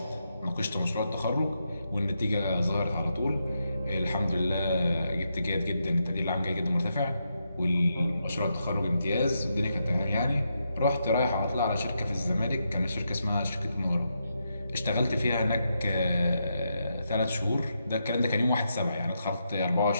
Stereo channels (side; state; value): both; inverted; correlation -0.83